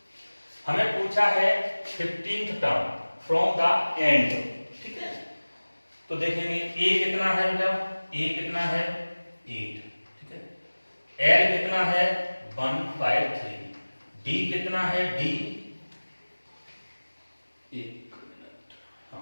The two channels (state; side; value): inverted; both; correlation -1.00